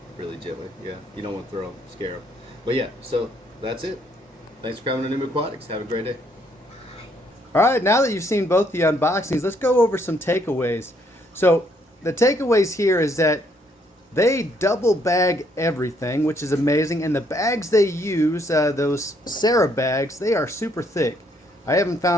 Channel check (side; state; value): both; normal; correlation 0.70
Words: Really gently, yeah, you don't want to throw them, scare them. But yeah, so that's it. Thanks for coming to New Aquatics. Have a great day. Alright, now that you've seen both the unboxings, let's go over some takeaways. So the takeaways here is that they double bag everything, which is amazing, and the bags they use, those Sarah bags, they are super thick. I haven't